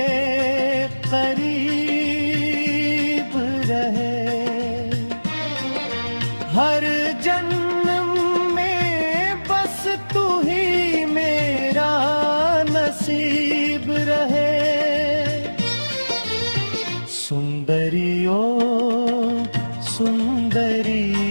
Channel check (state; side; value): inverted; both; correlation -1.00